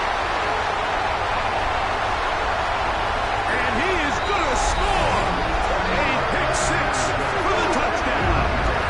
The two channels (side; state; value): both; identical; correlation 1.00